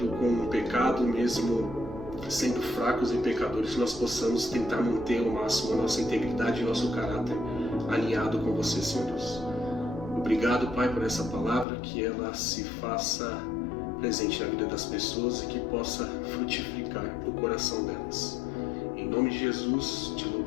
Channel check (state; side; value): drops out; right; at 11.7 s